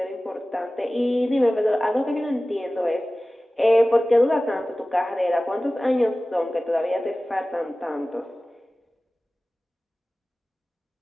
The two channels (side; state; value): both; normal; correlation 0.97